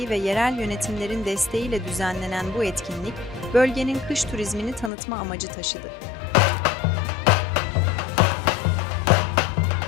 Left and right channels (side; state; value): right; drops out; at 4.9 s